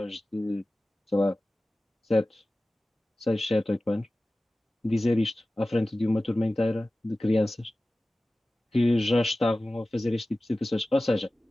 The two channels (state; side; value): normal; both; correlation 0.96